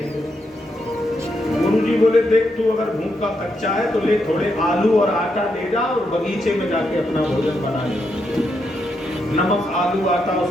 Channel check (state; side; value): normal; both; correlation 0.81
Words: गुरु जी बोले देख तू अगर भूख का कच्चा है तो ले थोड़े आलू और आटा ले जा और बगीचे में जाके अपना भोजन बना ले। नमक आलू आटा